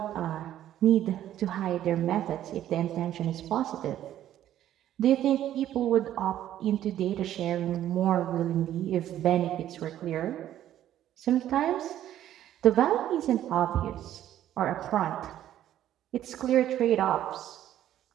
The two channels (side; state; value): left; quieter; 12.0 dB